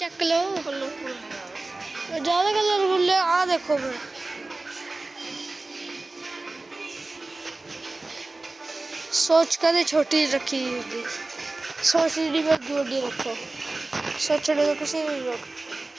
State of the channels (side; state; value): left; quieter; 3.1 dB